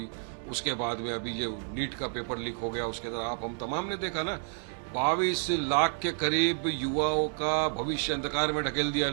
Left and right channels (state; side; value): silent; left; 57 dB below the other